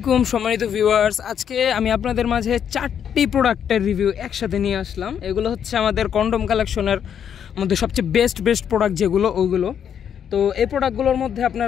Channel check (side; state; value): right; quieter; 8.5 dB